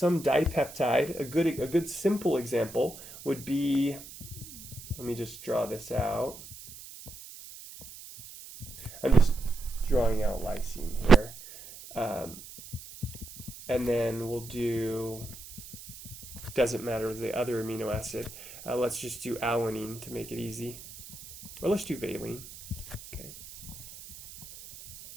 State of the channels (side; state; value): right; noise; hiss, 15 dB below the sound